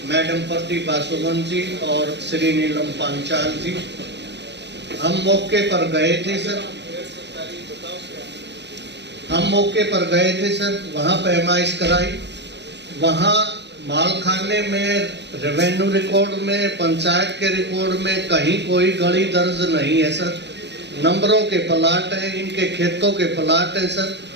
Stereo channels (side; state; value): left; late; 0.50 ms